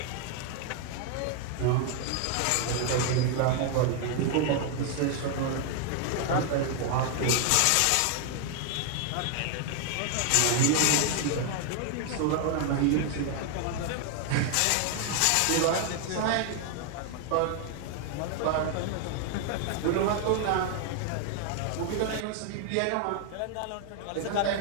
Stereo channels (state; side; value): different; both; correlation 0.00